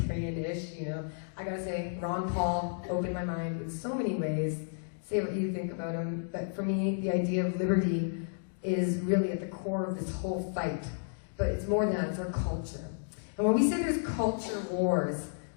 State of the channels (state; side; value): silent; right; digital silence